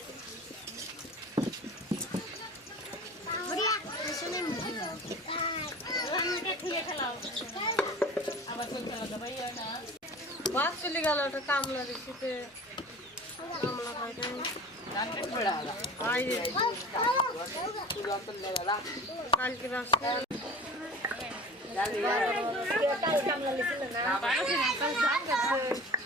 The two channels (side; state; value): both; normal; correlation 0.40